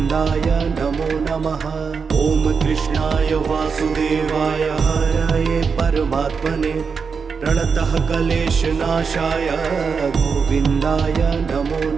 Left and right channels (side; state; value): left; quieter; 5.6 dB